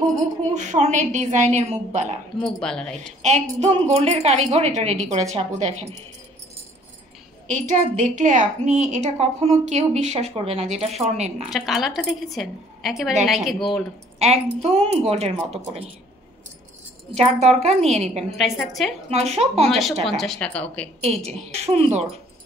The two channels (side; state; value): both; normal; correlation 0.58